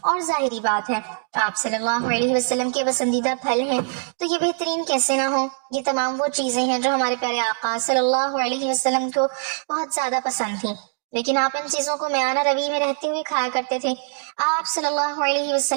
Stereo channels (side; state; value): left; silent; 64 dB below the other